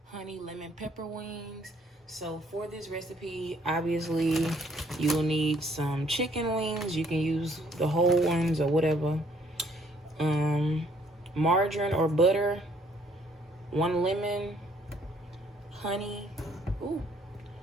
honey lemon pepper wings. So for this recipe, obviously you will need some chicken wings. You can use the whole ones or whatever. Margarine or butter, 1 lemon, honey,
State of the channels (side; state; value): both; normal; correlation 0.63